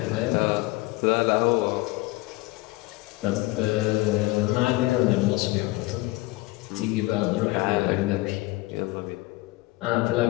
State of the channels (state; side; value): quieter; right; 20.8 dB